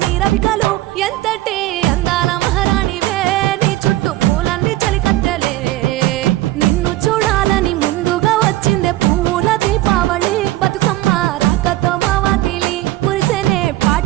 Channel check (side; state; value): left; quieter; 16.4 dB